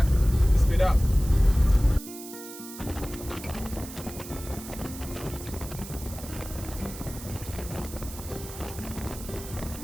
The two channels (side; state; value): right; noise; hiss, 13 dB below the sound